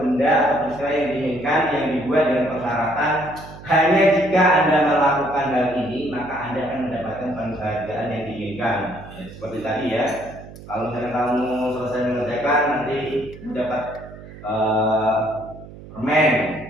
atau peristiwa yang diinginkan, yang dibuat dengan persyaratan hanya jika Anda melakukan hal ini, maka Anda akan mendapatkan penghargaan yang diinginkan. Ya, seperti tadi ya, kalau misalnya kamu selesai mengerjakan nanti dapat permen.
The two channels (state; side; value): noise; right; hum, 16 dB below the sound